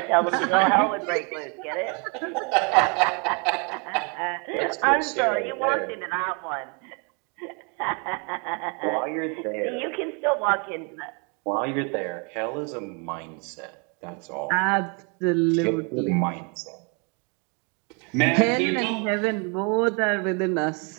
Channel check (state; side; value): quieter; left; 34.6 dB